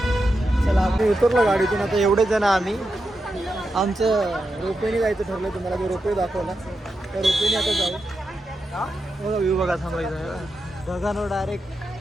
चला आम्ही उतरलो गाडीतून. आता एवढे जण आम्ही, आमचं रोपवेने जायचं ठरलं. तुम्हाला जो रोपवे दाखवला त्या रोपवेने आता जाऊ. बघा व्ह्यू बघा, थांबायचं. ढगांवर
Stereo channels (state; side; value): normal; both; correlation 0.88